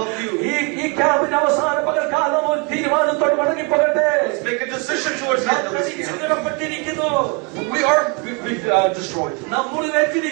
you. ഈ ക്യാമ്പിന് അവസാന പകൽക്കാലം ഒരു തീരുമാനത്തോട് മടങ്ങിപ്പോകട്ടെ. Let's make a decision towards the end of this camp. ചിതറപ്പെട്ടിരിക്കുന്നു. We are destroyed. നാം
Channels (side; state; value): left; quieter; 31.0 dB